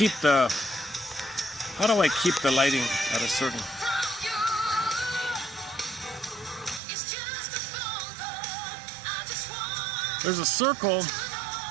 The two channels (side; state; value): left; drops out; at 6.8 s